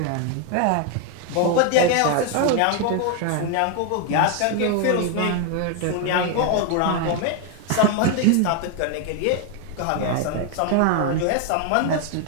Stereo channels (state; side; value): different; both; correlation 0.01